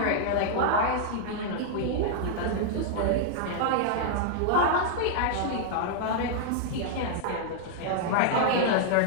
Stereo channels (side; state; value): both; different; correlation -0.01